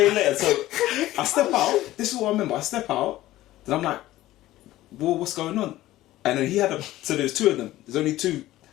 later. So I step out. This is what I remember. I step out. Then I'm like, "Well, what's going on?" And then so there's two of them. There's only two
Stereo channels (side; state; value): right; quieter; 15.6 dB